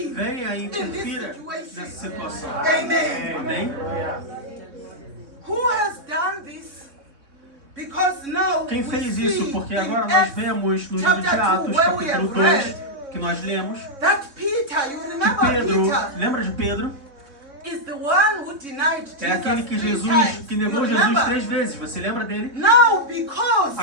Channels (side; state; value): left; late; 3.6 ms